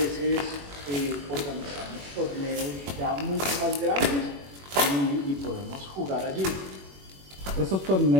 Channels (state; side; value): late; left; 21 ms